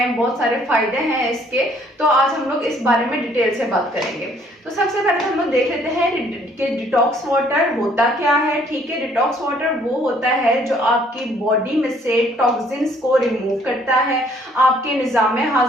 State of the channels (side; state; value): both; normal; correlation 0.62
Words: बहुत सारे फायदे हैं इसके। तो आज हम लोग इस बारे में डिटेल से बात करेंगे। तो सबसे पहले हम लोग देख लेते हैं कि डिटॉक्स वाटर होता क्या है। ठीक है, डिटॉक्स वाटर वो होता है जो आपकी बॉडी में से टॉक्सिन्स को रिमूव करता है, आपके निजाम